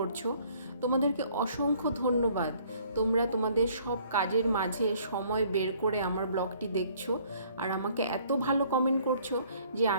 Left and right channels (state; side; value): inverted; both; correlation -0.60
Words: তোমাদেরকে অসংখ্য ধন্যবাদ। তোমরা তোমাদের সব কাজের মাঝে সময় বের করে আমার ব্লগটি দেখছো আর আমাকে এত ভালো কমেন্ট করছো যে